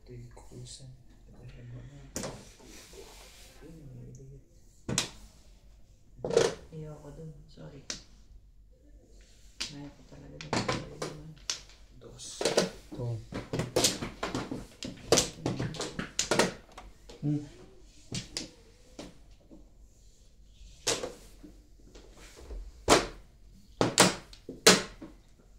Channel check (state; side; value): identical; both; correlation 1.00